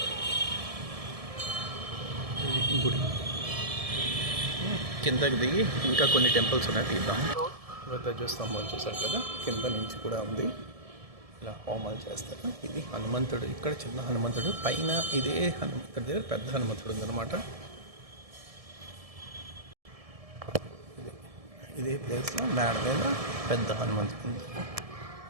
గుడి కిందకి దిగి ఇంకా కొన్ని టెంపుల్స్ ఉన్నాయి, తీద్దాం. ధ్వజస్తంభం చూసారు కదా, కింద నుంచి కూడా ఉంది. ఇలా హోమాలు చేస్తారు. ఇది హనుమంతుడు. ఇక్కడ చిన్న హనుమంతుడు, పైన ఇదే హనుమంతుడి దగ్గర పెద్ద హనుమంతుడు ఉందన్నమాట. ఇదే ప్లేస్లో మేడ మీద పెద్ద హనుమంతుడు ఉంది.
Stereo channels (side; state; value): left; late; 1.7 ms